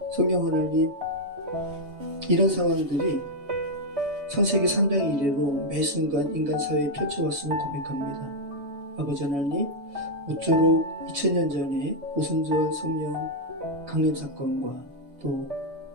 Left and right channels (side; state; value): left; late; 3.2 ms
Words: 성경 하나님, 이런 상황들이 창세기 3장 이래로 매 순간 인간 사회에 펼쳐왔음을 고백합니다. 아버지 하나님, 모쪼록 2000년 전에 오순절 성령 강림 사건과 또